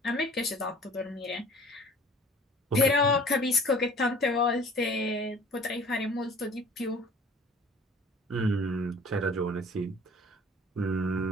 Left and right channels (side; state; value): both; normal; correlation 0.49